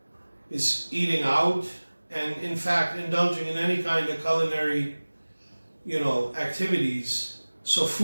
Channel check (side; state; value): both; inverted; correlation -1.00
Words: is eating out, and in fact indulging in any kind of culinary activities. So